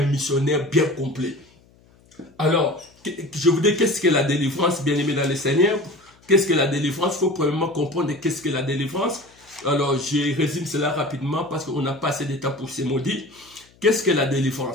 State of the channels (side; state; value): left; noise; hum, 30 dB below the sound